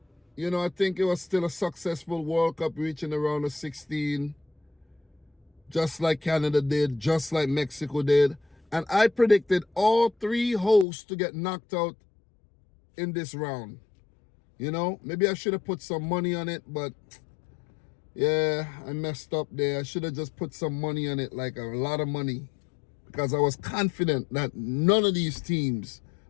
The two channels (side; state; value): right; drops out; at 10.9 s